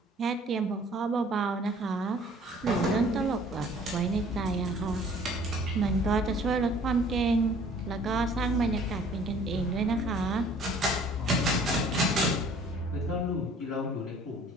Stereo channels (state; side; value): normal; both; correlation 0.54